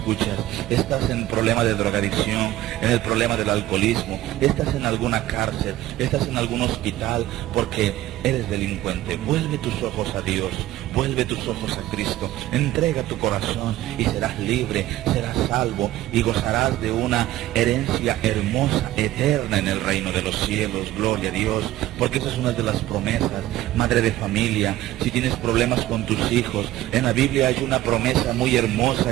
estás en problema de drogadicción, en el problema del alcoholismo, estás en alguna cárcel, estás en algún hospital porque eres delincuente. Vuelve tus ojos a Dios, vuelve tus ojos a Cristo, entrega tu corazón y serás libre, serás salvo y gozarás de una herencia hermosa, eterna en el reino de los cielos. Gloria a Dios, porque esa es una de las promesas. Madre de familia, si tienes problemas con tus hijos, en la Biblia hay una promesa muy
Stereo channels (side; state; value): left; quieter; 15.0 dB